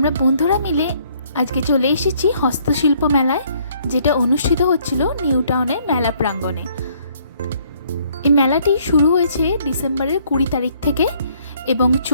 বন্ধুরা মিলে আজকে চলে এসেছি হস্তশিল্প মেলায়, যেটা অনুষ্ঠিত হচ্ছিল নিউ টাউনের মেলা প্রাঙ্গণে। এই মেলাটি শুরু হয়েছে ডিসেম্বরের 20 তারিখ থেকে এবং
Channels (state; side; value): inverted; both; correlation -0.64